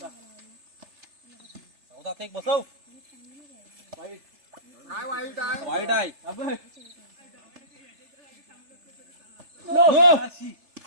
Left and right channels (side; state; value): left; late; 3.3 ms